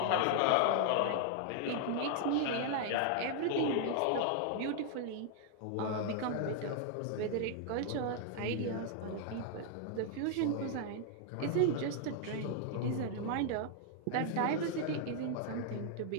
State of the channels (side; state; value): both; different; correlation 0.00